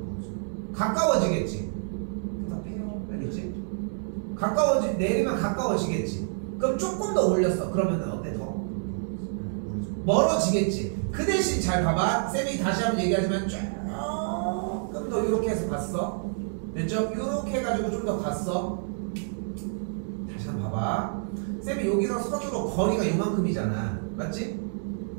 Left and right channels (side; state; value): left; silent; digital silence